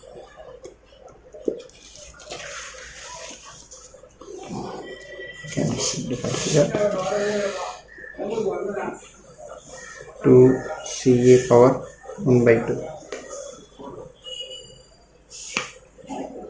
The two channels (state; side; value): identical; both; correlation 1.00